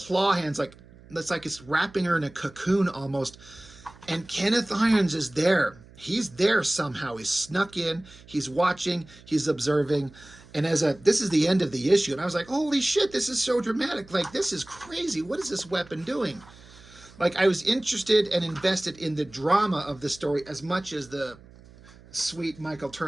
hands, it's like it's wrapping her in a cocoon almost. And Kenneth Irons is there. He's there somehow. He's snuck in. He's watching. He's observing. And this is the end of the issue. And I was like, holy shit, this is so dramatic. This is crazy. What is this weapon doing? I was interested and invested in the drama of the story as much as the sweet Michael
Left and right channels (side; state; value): right; noise; hum, 23 dB below the sound